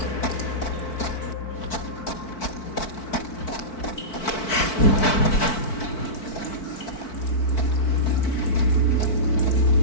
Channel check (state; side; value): late; right; 4.5 ms